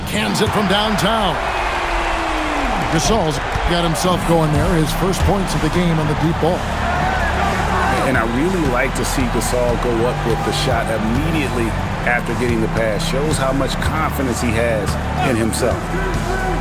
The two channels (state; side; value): identical; both; correlation 1.00